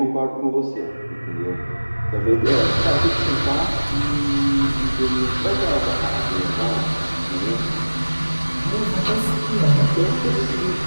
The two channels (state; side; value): inverted; both; correlation -1.00